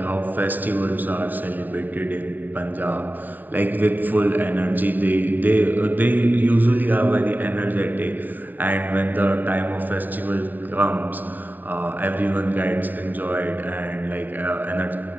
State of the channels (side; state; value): left; late; 0.089 ms